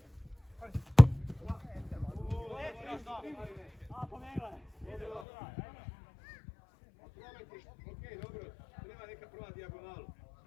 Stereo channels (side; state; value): right; drops out; at 5.2 s